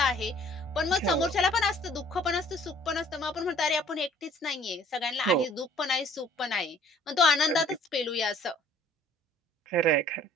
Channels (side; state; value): both; normal; correlation 0.56